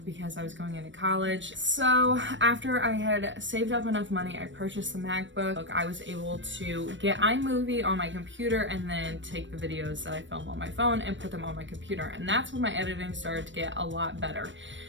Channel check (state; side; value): late; left; 0.54 ms